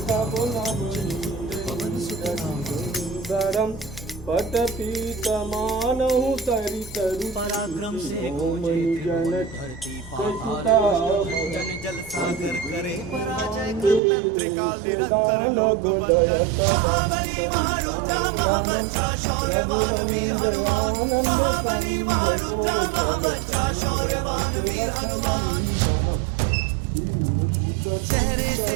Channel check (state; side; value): drops out; left; at 14.0 s